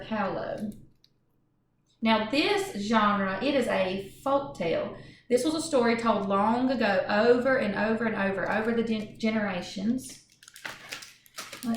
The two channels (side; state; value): both; identical; correlation 1.00